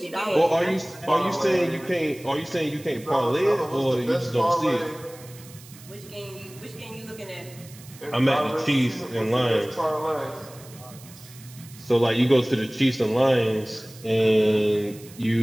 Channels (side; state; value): right; noise; hiss, 20 dB below the sound